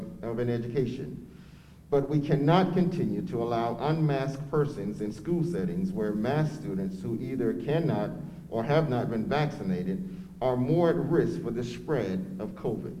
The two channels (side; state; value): both; identical; correlation 1.00